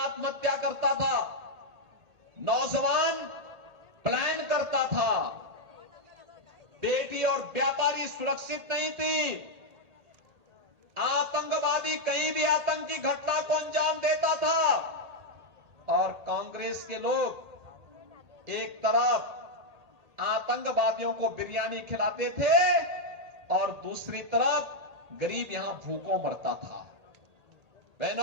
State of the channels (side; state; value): left; late; 1.8 ms